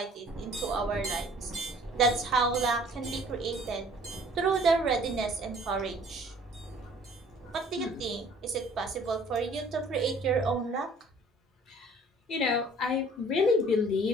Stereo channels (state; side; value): normal; both; correlation 0.54